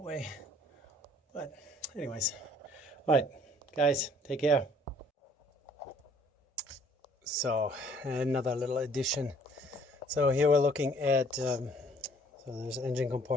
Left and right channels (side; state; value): both; normal; correlation 0.58